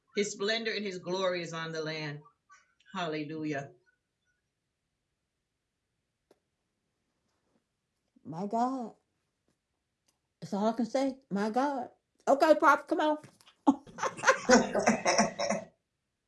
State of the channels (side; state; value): both; identical; correlation 1.00